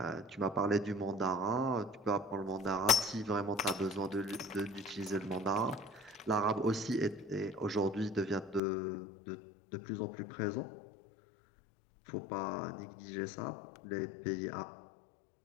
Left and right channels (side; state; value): right; drops out; at 8.6 s